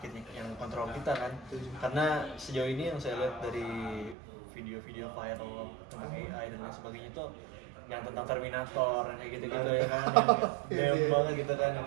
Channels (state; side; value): drops out; left; at 4.2 s